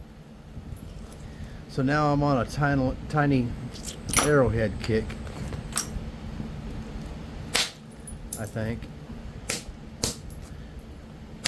So now I'm on a tiny arrowhead kick, I think.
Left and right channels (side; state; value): both; identical; correlation 1.00